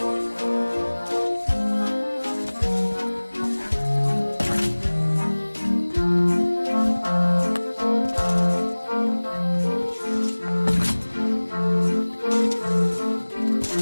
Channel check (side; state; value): both; inverted; correlation -1.00